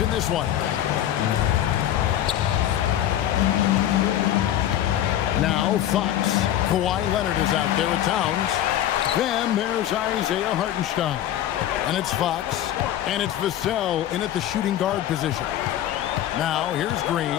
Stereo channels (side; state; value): right; quieter; 11.9 dB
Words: in this one. Now Fox. Kawhi Leonard is out there with Towns. Then there's Isaiah Hartenstein. And it's Fox. And it's Vassell in at the shooting guard position. Now here's